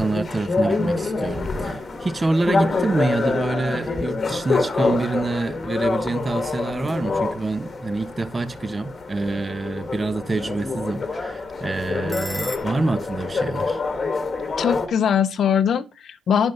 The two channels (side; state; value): both; normal; correlation 0.85